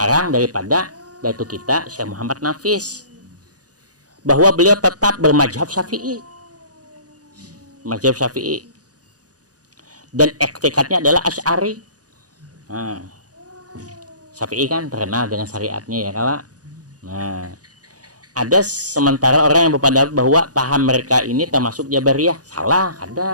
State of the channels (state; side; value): late; left; 0.68 ms